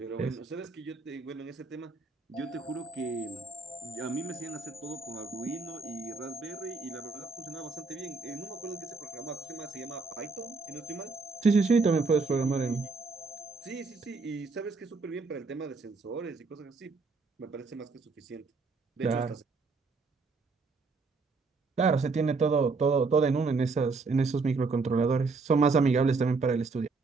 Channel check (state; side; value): quieter; left; 4.2 dB